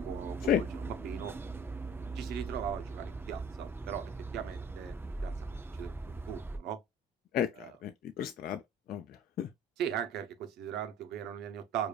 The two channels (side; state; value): both; normal; correlation 0.47